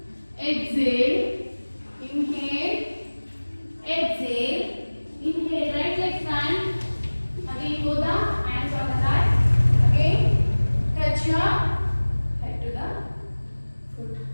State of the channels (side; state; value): both; inverted; correlation -1.00